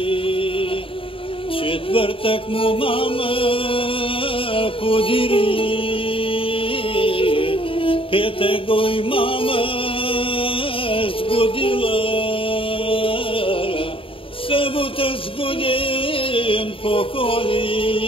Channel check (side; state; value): right; late; 0.26 ms